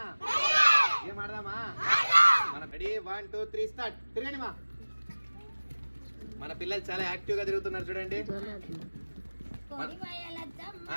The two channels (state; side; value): inverted; both; correlation -1.00